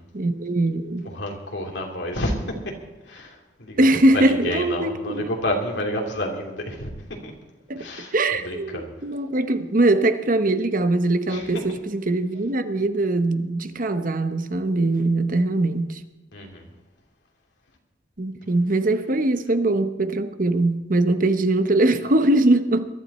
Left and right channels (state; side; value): normal; both; correlation 0.60